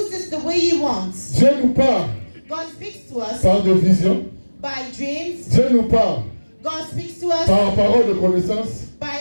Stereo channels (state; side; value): inverted; both; correlation -1.00